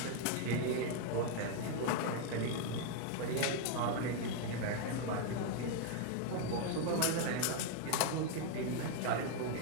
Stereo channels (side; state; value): both; different; correlation 0.00